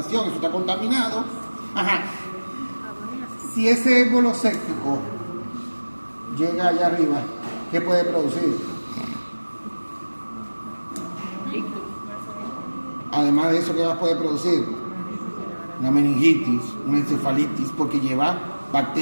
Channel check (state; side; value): inverted; both; correlation -1.00